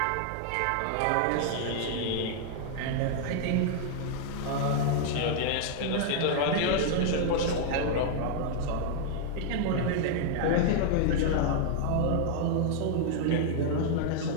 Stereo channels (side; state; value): both; different; correlation 0.00